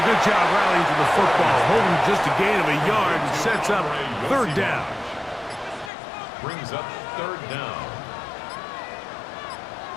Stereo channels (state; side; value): drops out; right; at 5.9 s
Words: good job rallying to the football, holding just a gain of a yard and sets up 3rd down. Brings up 3rd down.